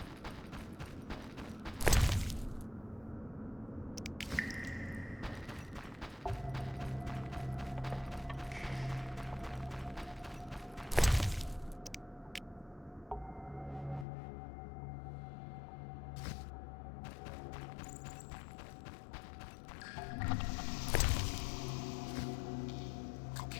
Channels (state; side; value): drops out; right; at 14.1 s